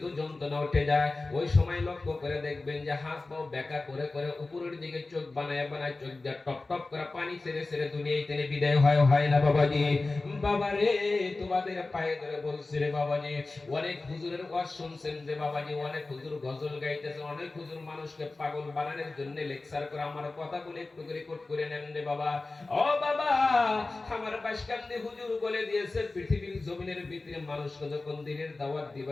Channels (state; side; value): quieter; right; 3.3 dB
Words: যন্ত্রণা উঠে যায়, ওই সময় লক্ষ্য করে দেখবেন যে হাত পাও বেঁকা করে করে উপরের দিকে চোখ বানায় বানায় চোখ দিয়ে টপ টপ করে পানি ছেড়ে ছেড়ে দুনিয়ায় থেকে বিদায় হয় না বাবাজি। বাবারে, তোমাদের পায়ে ধরে বলছি রে বাবাজি, অনেক হুজুরের ওয়াজ শুনছেন যে বাবাজি, অনেক হুজুর গজল গাইতেছে, অনেক হুজুর মানুষকে পাগল বানানোর জন্য লেকচার করে। আমার কথাগুলো একটু রেকর্ড করে নেন রে বাবা। ও বাবা, আমার বাসকান্দি হুজুর বলে দিয়েছে, পৃথিবীর জমিনের ভিতরে মানুষকে যখন দিনের দাওয়াত